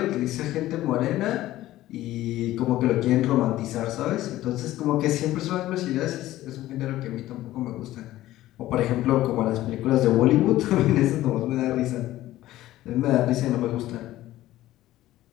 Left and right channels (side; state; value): right; quieter; 15.2 dB